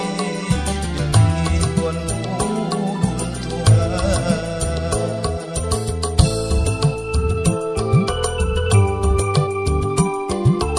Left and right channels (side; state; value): both; identical; correlation 1.00